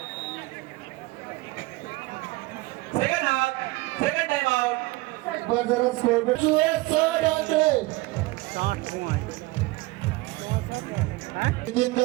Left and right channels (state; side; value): quieter; left; 21.0 dB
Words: second time out पर जरा स्कोर पे